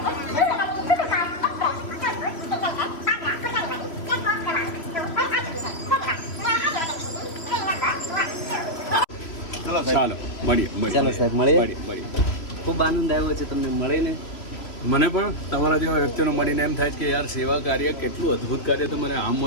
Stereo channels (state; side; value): late; right; 3.0 ms